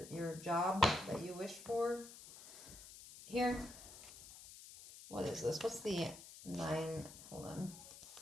your job that you wish for. Here. What is this? What's the nine? Hold on.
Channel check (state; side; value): noise; left; hiss, 15 dB below the sound